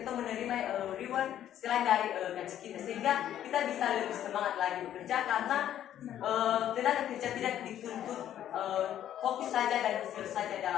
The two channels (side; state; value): right; quieter; 11.2 dB